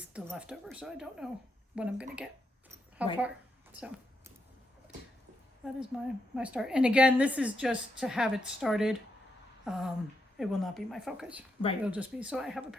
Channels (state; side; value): normal; both; correlation 0.82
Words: the leftover. So I don't know when I'm going to get how far. So that is my start. And again, this is just to have it started. It will not be my focus. Right. It'll just be so I have a